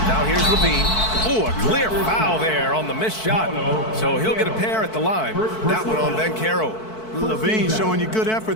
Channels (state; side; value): late; right; 4.6 ms